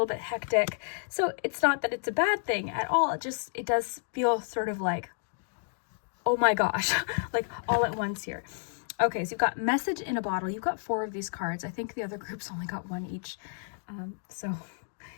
bit hectic. So it's not that it's a bad thing at all. It does feel sort of like, oh my gosh, like all at once here. Okay, so you've got Message in a Bottle. You've got 4 of these cards. I think the other groups only got 1 each. So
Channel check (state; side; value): silent; right; digital silence